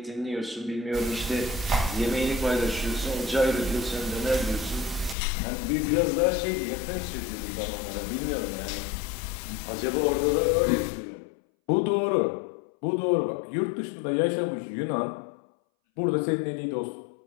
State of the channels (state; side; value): drops out; right; at 5.2 s